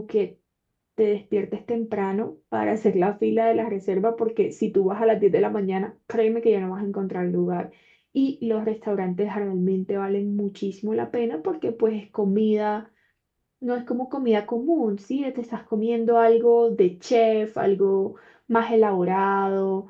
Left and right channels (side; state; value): both; identical; correlation 1.00